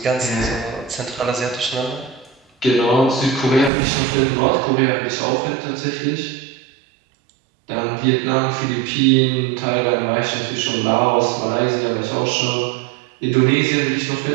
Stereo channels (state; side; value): drops out; left; at 3.7 s